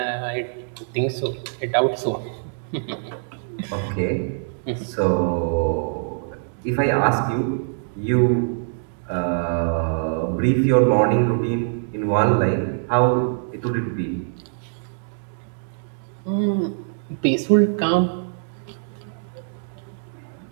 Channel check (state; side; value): silent; left; digital silence